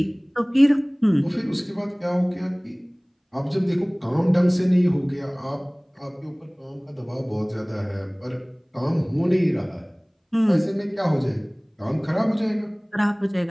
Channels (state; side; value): identical; both; correlation 1.00